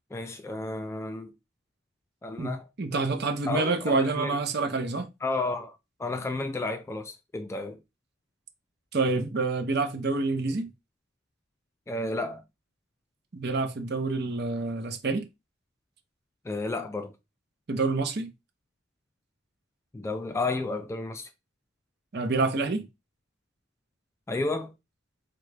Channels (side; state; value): both; normal; correlation 0.33